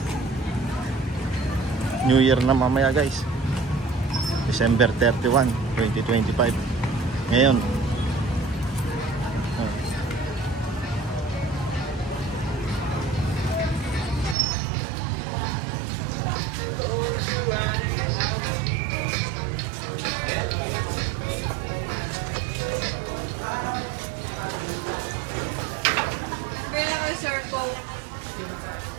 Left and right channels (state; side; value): drops out; left; at 14.4 s